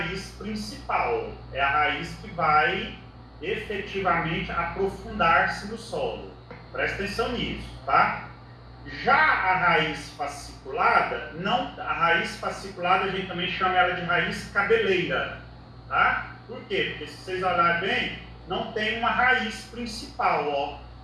principal, é a raiz que vai efetivamente aprofundar-se no solo. Presta atenção nisso, tá? Já a raiz fasciculada, a raiz fasciculada a gente também chama ela de raiz cabeleira, tá? Por quê? Porque se vocês olharem bem, não tem uma raiz principal, ó,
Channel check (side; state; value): both; identical; correlation 1.00